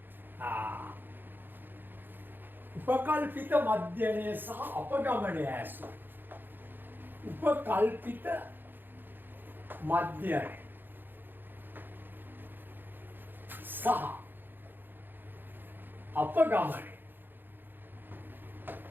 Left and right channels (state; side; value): late; left; 0.094 ms